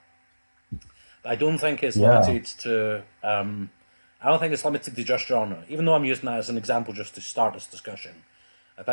But I don't think it's limited to... I don't think it's limited to just genre, even though I'm using that as an example just to start this discussion. I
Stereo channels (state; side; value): inverted; both; correlation -1.00